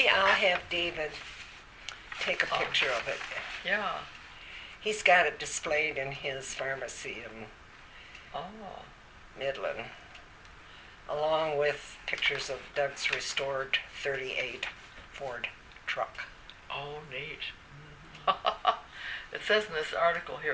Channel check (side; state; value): both; identical; correlation 1.00